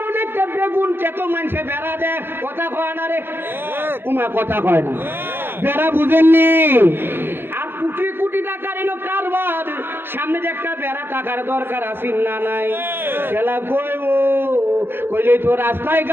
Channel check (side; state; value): left; late; 0.10 ms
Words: একটা বেগুন চেত মানুষে বেড়া দেয় কথা কয় না রে উমা কথা কয় না বেড়া বুঝেননি আর কোটি কোটি টাকার এলো কারবার সামনে যে একটা বেড়া টাকার দরকার আছে না নাই খেলা কইব কইলে তো রাস্তায়